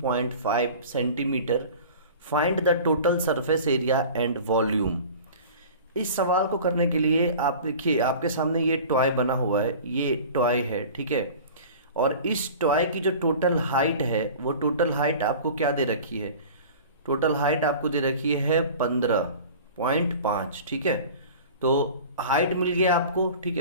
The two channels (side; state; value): both; inverted; correlation -0.40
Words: centimetre. Find the total surface area and volume. इस सवाल को करने के लिए आप देखिए आपके सामने ये टॉय बना हुआ है, ये टॉय है, ठीक है. और इस टॉय की जो टोटल हाइट है वो टोटल हाइट आपको क्या दे रखी है? टोटल हाइट आपको दे रखी है 15.5, ठीक है. तो हाइट मिल गया आपको, ठीक